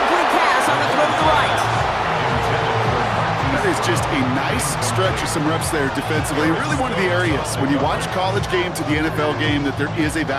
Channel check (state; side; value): identical; both; correlation 1.00